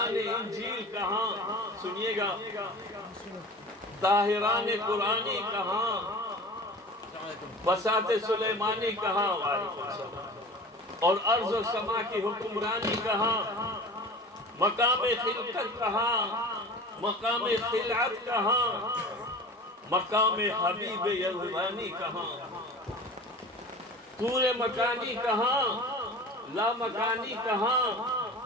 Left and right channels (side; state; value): both; normal; correlation 0.38